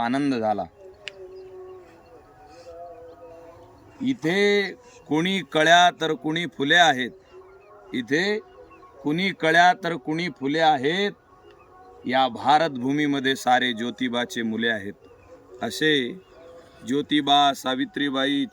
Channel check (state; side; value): identical; both; correlation 1.00